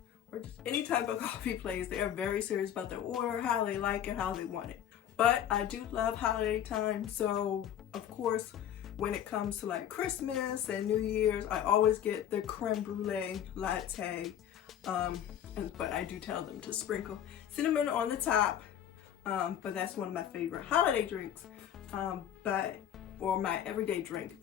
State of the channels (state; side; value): quieter; right; 10.1 dB